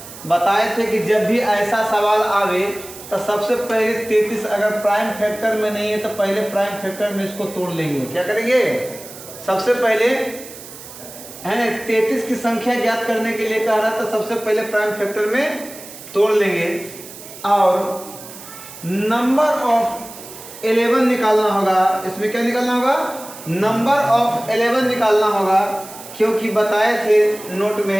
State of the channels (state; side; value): noise; right; hiss, 15 dB below the sound